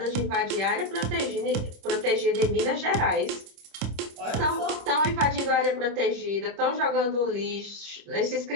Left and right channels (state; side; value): late; left; 26 ms